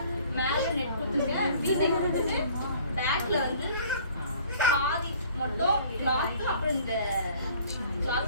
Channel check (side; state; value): both; inverted; correlation -0.53